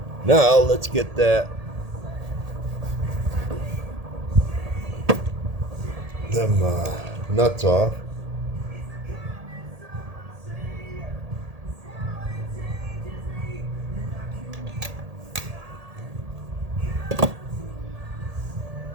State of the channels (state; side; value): late; left; 1.8 ms